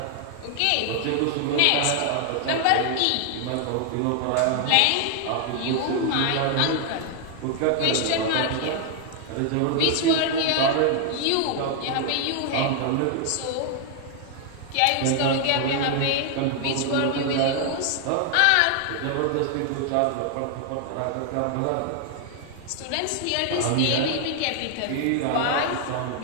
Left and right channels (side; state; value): both; different; correlation 0.00